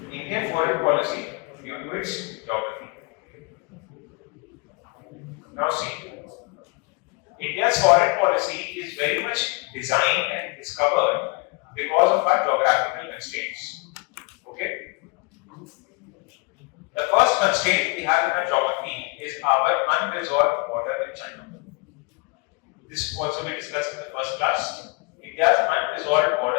Indian foreign policy due to its geography. Now see, India's foreign policy is very much designed and discovered because of our geographical constraints. Okay? The first constraint we have in our geography is our unresolved border with China. This also we discussed in the first class. India's unresolved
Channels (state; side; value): quieter; right; 28.8 dB